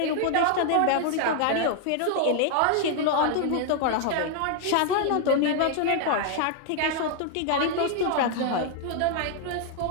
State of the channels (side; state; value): both; different; correlation 0.00